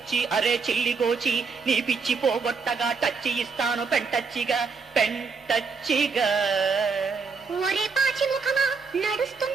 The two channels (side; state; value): left; quieter; 5.1 dB